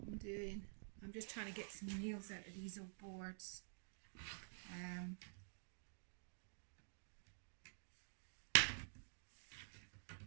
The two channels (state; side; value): silent; left; digital silence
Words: doing. I'm just trying to get some nails out of these old boards.